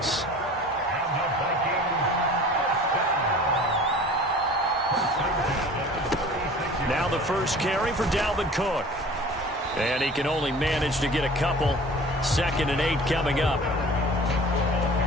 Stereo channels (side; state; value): both; normal; correlation 0.43